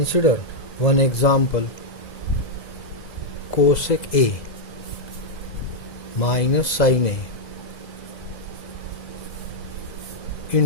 one example: cosec A minus sin A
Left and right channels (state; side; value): late; right; 2.0 ms